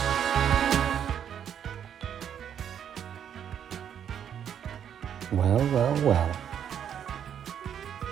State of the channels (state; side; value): quieter; left; 8.9 dB